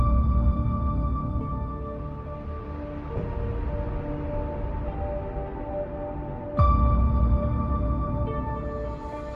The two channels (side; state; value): both; identical; correlation 1.00